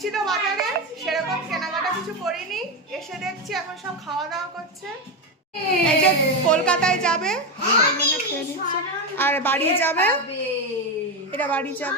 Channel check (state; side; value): normal; both; correlation 0.12